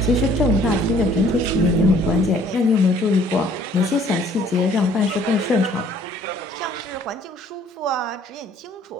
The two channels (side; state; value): both; normal; correlation 0.58